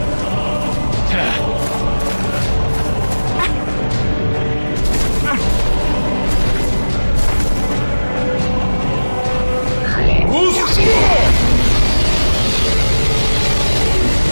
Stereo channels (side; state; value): both; inverted; correlation -1.00